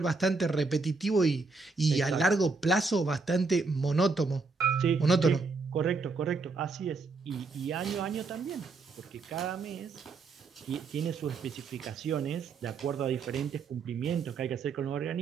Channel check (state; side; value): quieter; left; 4.1 dB